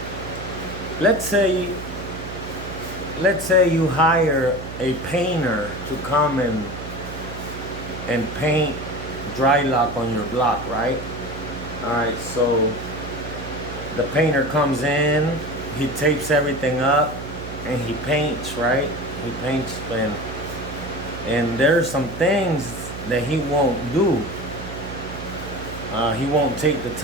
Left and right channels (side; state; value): right; noise; hum, 10 dB below the sound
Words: Let's say you hire a painter to come and paint dry lock on your block, right? Alright, so the painter comes in, he tapes everything up, and he paints, right? He paints, and there's some things that he won't do. He won't take the